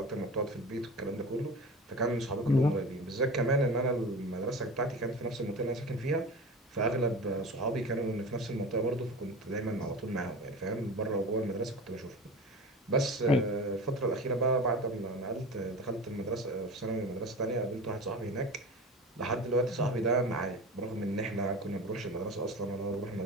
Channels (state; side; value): normal; both; correlation 0.33